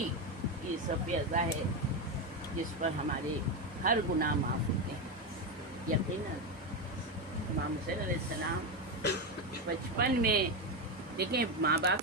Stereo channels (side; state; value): both; normal; correlation 0.11